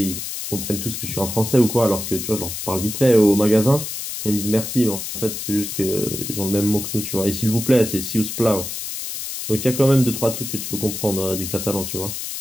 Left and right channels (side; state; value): left; noise; hiss, 6 dB below the sound